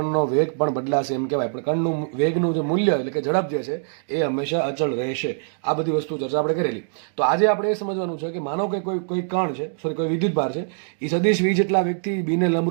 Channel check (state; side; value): silent; left; digital silence